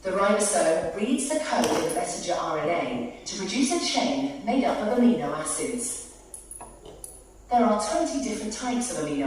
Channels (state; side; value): identical; both; correlation 1.00